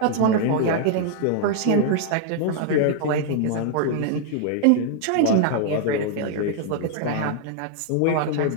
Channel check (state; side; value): different; both; correlation 0.00